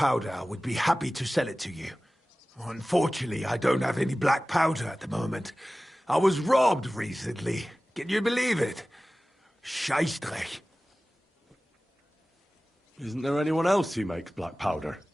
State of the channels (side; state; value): both; normal; correlation 0.97